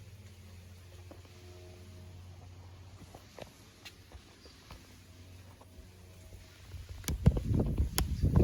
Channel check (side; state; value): both; identical; correlation 1.00